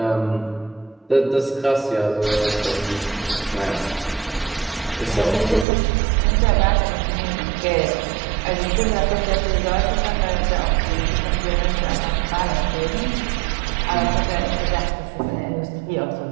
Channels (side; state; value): left; drops out; at 5.7 s